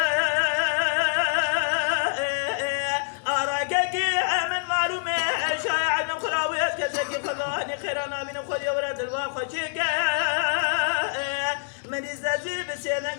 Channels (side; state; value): right; silent; 61 dB below the other